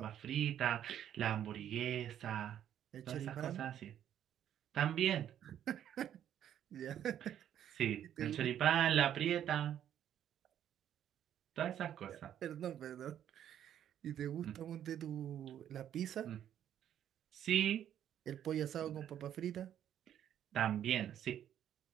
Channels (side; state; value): left; quieter; 10.3 dB